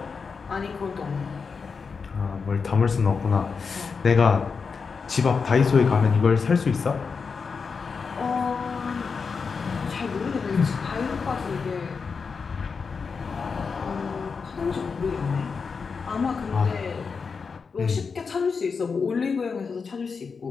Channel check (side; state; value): right; quieter; 5.3 dB